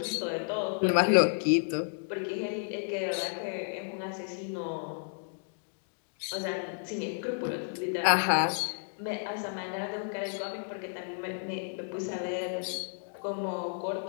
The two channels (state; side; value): silent; right; digital silence